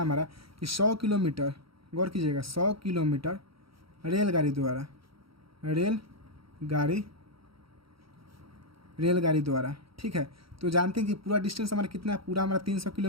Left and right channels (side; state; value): left; late; 0.75 ms